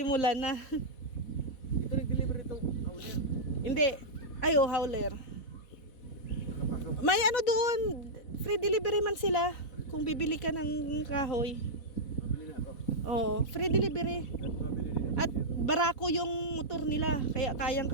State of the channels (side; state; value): right; late; 4.1 ms